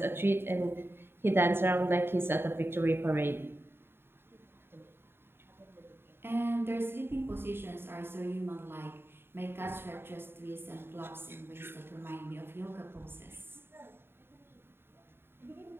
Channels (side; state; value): left; late; 0.11 ms